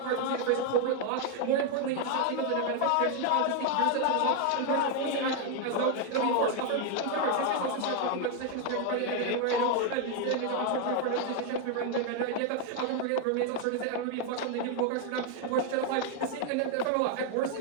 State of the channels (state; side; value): different; both; correlation 0.01